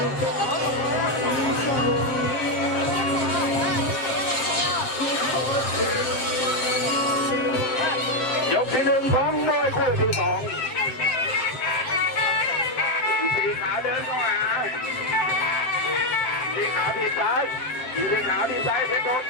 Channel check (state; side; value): late; right; 7.6 ms